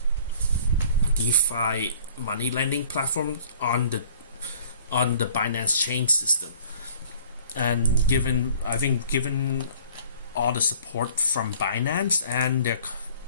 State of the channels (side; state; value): both; inverted; correlation -0.52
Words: DeFi money lending platforms on the Binance chain system. And given all the support from Binance and